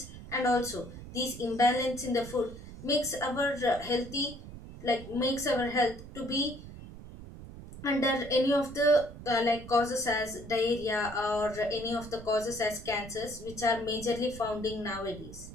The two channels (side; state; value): right; noise; rumble, 14 dB below the sound